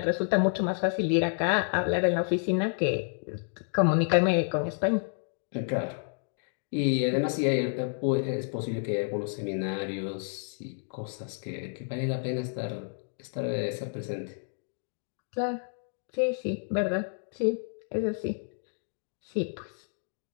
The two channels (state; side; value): silent; right; digital silence